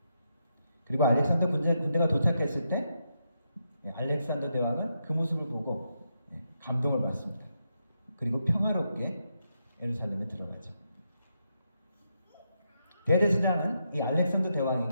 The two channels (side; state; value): both; inverted; correlation -0.82